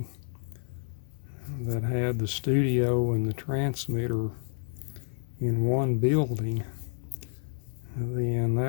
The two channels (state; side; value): silent; right; digital silence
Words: that had the studio and the transmitter in one building, then